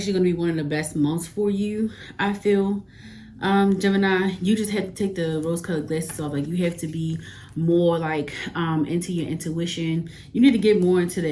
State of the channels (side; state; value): both; identical; correlation 1.00